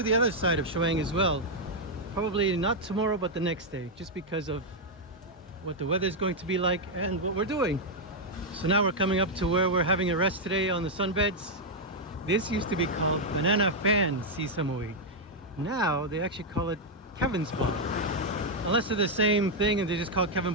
the other side of Chaweng as well. Probably not tomorrow, but the next day, just because of what the weather is going to be like and what we're doing. So now we're coming up to where we're having a rest today on the sunbeds. This used to be called Banana Fan Koh Samui. Now they actually call it Kevin's Bar. Unless they're the same thing and they just call Kevin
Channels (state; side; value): normal; both; correlation -0.02